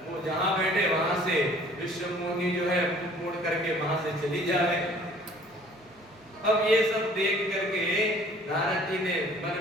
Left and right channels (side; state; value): both; normal; correlation 0.53